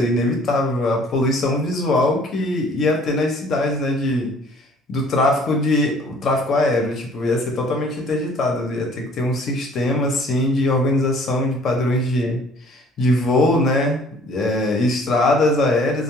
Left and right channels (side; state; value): both; normal; correlation 0.55